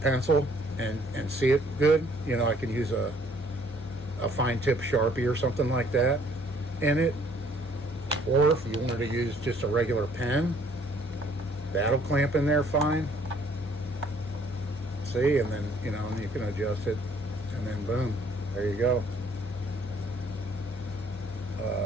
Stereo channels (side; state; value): both; normal; correlation 0.61